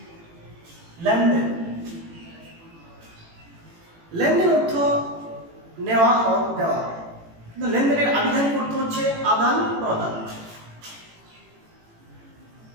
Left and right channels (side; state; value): left; late; 18 ms